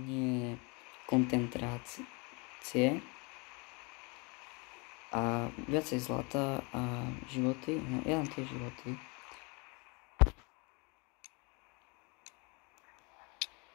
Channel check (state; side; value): quieter; right; 30.3 dB